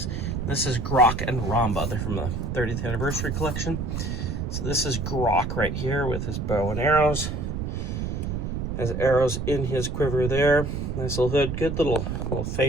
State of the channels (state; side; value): noise; right; rumble, 3 dB below the sound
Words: This is Graak and Romba. They're from the 30th Anniversary Collection. So this is Graak right here with his bow and arrows. Has arrows in his quiver there. Nice little hood. Good little